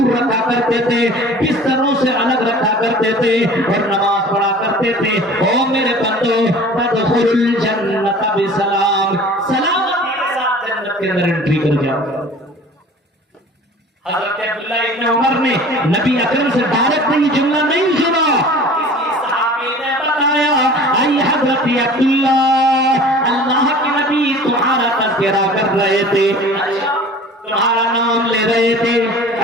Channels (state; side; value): normal; both; correlation 0.44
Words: رکھا کرتے تھے، بستروں سے الگ رکھا کرتے تھے اور نماز پڑھا کرتے تھے۔ او میرے بندو، تدخل الجنت بسلام، سلامتی کے ساتھ جنت کے اندر انٹری کر جاؤ۔ حضرت عبداللہ ابن عمر نے نبی اکرم سے ڈائریکٹ یہ جملہ نہیں سنا، کسی صحابی نے بتایا اے حضرت عبداللہ، اللہ کے نبی تمہارا تذکرہ کر رہے تھے، تمہارا نام لے رہے تھے،